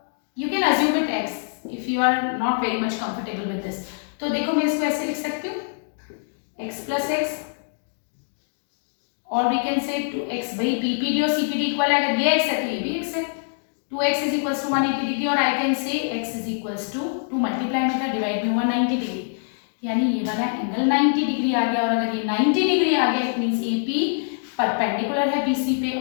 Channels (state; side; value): silent; right; digital silence